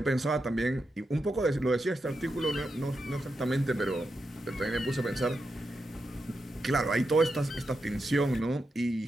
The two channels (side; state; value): both; normal; correlation 0.87